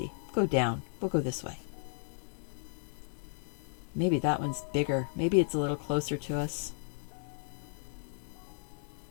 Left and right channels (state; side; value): silent; right; digital silence